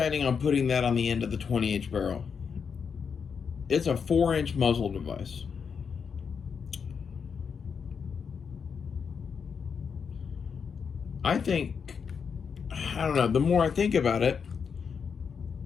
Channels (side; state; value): right; quieter; 6.3 dB